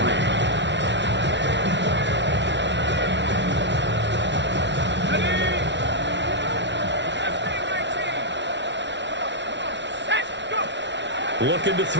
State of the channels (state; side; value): late; left; 0.51 ms